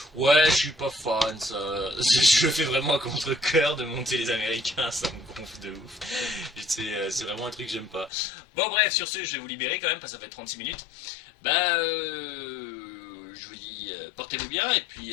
Ouais, je suis pas fan, ça. Je le fais vraiment à contre-cœur de monter les Américains, ça me gonfle de ouf. C'est vraiment un truc que j'aime pas. Bon, bref, sur ce, je vais vous libérer quand même, parce que ça fait 36 minutes. Bah, je vous dis, portez portez-vous bien et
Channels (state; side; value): drops out; right; at 8.1 s